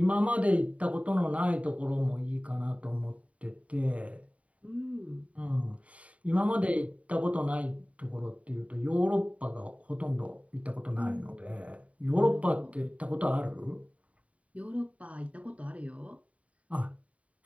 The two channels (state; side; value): late; left; 0.067 ms